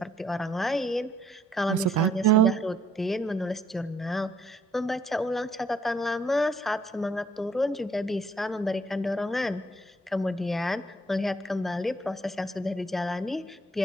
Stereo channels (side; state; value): both; normal; correlation 0.66